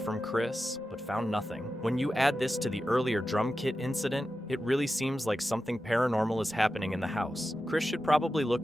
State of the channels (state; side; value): normal; both; correlation 0.92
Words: Chris, but found nothing. When you add this to the earlier drum kit incident, it really seems like something paranormal is happening in the house. Chris should probably